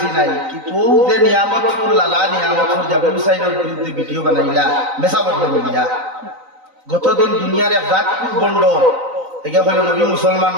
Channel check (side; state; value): left; late; 3.9 ms